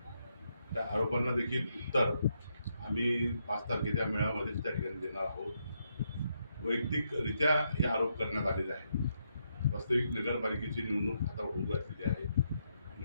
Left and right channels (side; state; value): both; inverted; correlation -0.79